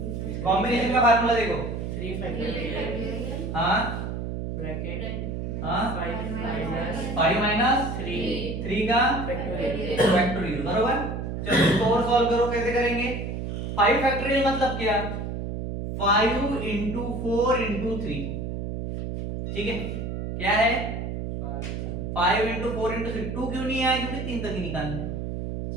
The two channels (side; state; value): right; noise; hum, 4 dB below the sound